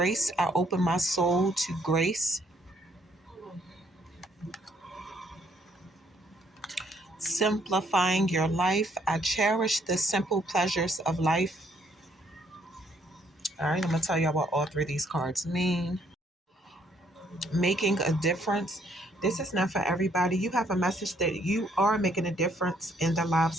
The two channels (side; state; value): both; normal; correlation 0.68